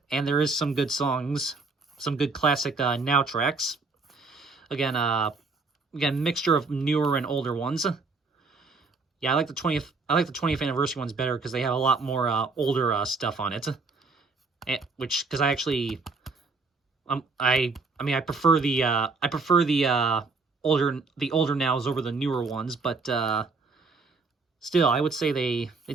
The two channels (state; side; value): quieter; left; 4.0 dB